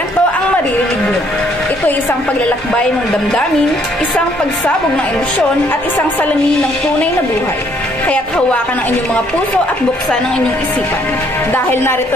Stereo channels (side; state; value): both; normal; correlation 0.66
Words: ang maririnig nyo. Ito ay isang paglalakbay ng damdamin, isang pagsabog ng emosyon at isang salamin ng tunay na buhay. Kaya't hawakan ang inyong mga puso at buksan ang inyong isipan. Dahil